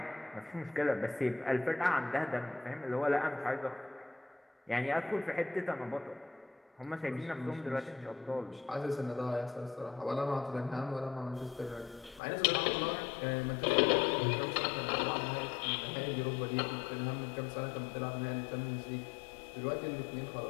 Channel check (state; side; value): drops out; right; at 12.2 s